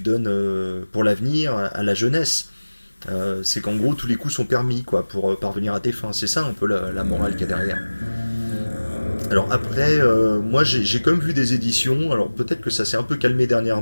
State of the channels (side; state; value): both; inverted; correlation -1.00